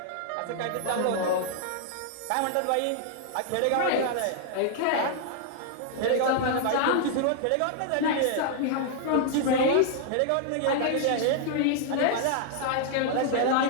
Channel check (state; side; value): different; both; correlation -0.01